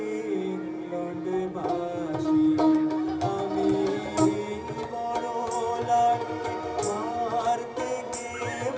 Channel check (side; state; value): both; identical; correlation 1.00